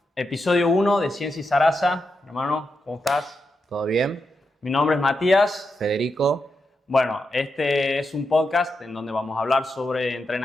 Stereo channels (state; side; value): normal; both; correlation 0.86